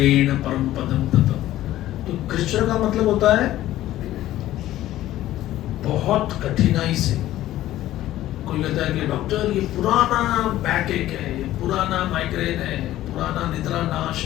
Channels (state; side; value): quieter; right; 14.3 dB